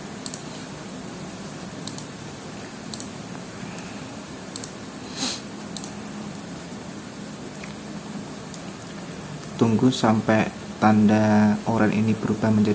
Tunggu sampai tanda oranye ini berubah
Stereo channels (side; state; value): both; identical; correlation 1.00